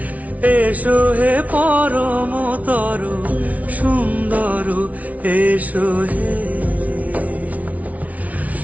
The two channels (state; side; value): late; left; 0.070 ms